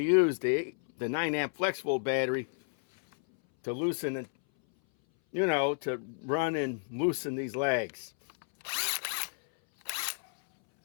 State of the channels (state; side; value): silent; right; 57 dB below the other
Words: use the 9 amp flex volt battery to loosen it, to run and loosen these legs.